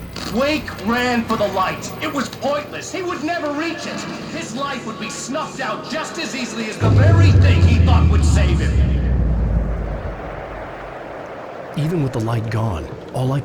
Wake ran for the light. It was pointless. He would never reach it. His life would be snuffed out just as easily as the very thing he thought would save him. Even with the light gone, all I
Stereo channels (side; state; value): both; identical; correlation 1.00